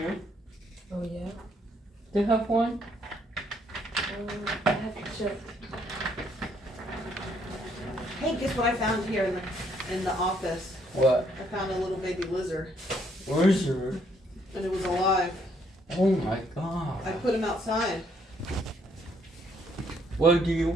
Oh yeah? Do you have one? I have to check. Hey, guess what I found here in the office? What? I found a little baby lizard. Lizard? And it was alive. Oh my god. I put him outside. What do you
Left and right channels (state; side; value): normal; both; correlation 0.69